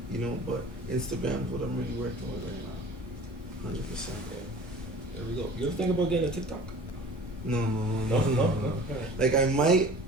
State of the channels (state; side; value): normal; both; correlation 0.44